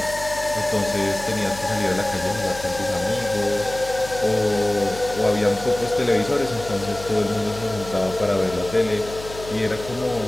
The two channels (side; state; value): left; noise; hum, 14 dB below the sound